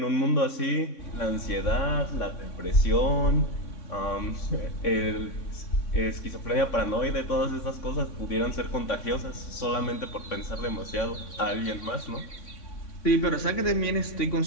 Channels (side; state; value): right; late; 3.6 ms